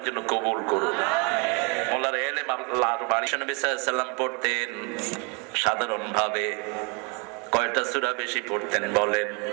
জন্য কবুল করুন। মোল্লার এলেম আল্লাহর বাণী। নবী সাল্লাল্লাহু আলাইহি ওয়াসাল্লাম পড়তেন সাধারণ ভাবে। কয়টা সূরা বেশি পড়তেন বলেন?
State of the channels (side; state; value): left; quieter; 32.6 dB